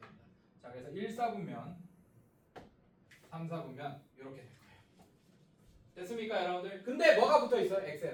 자 그래서 1, 4분면 3, 4분면 이렇게 될 거예요. 됐습니까 여러분들? 근데 뭐가 붙어있어요?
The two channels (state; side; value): identical; both; correlation 1.00